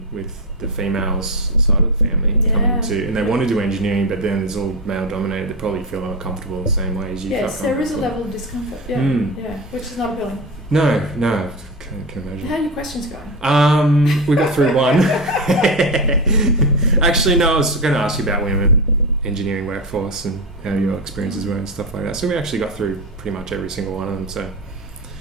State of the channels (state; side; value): normal; both; correlation 0.17